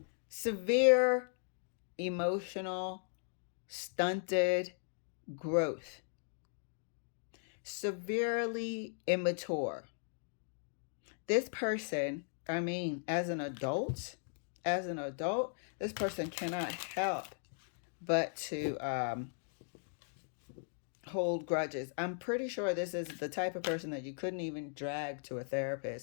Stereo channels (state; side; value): silent; right; digital silence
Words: Severe emotional stunted growth. Severely immature. This person, I mean, as an adult, this person cannot help but to hold grudges. I'm pretty sure this is the type of person that you couldn't even drag to a